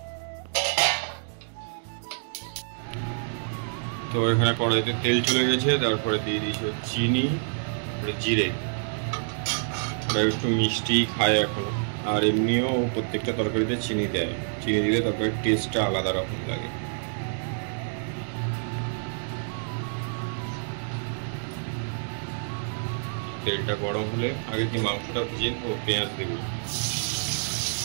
তো এখানে কড়াইতে তেল চলে গেছে, তারপরে দিয়ে দিয়েছি চিনি, জিরে। ওরা একটু মিষ্টি খায় এখনো, আর এমনিও প্রত্যেকটা তরকারিতে চিনি দেয়, চিনি দিলে তরকারির টেস্টটা আলাদা রকম লাগে। তেলটা গরম হলে আগে কি মাংসটা ভেজে নেবো, পেঁয়াজ দেবো।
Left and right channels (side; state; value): left; silent; digital silence